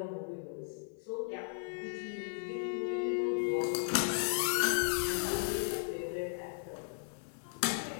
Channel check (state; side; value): silent; right; digital silence